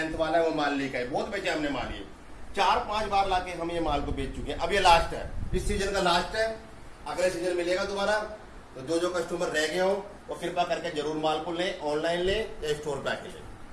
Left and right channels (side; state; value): both; identical; correlation 1.00